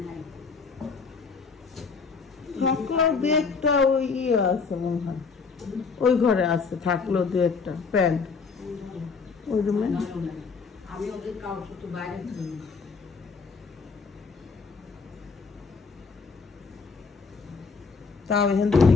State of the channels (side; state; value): right; quieter; 4.9 dB